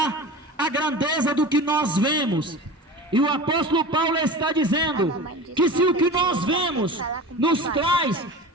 a grandeza do que nós vemos. E o apóstolo Paulo está dizendo que se o que nós vemos nos traz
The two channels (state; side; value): normal; both; correlation 0.33